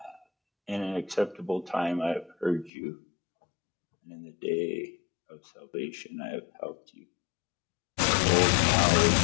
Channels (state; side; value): drops out; right; at 2.7 s